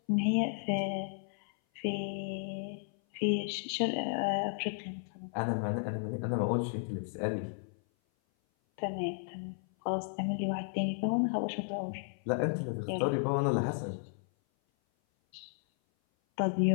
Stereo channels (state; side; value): silent; right; 55 dB below the other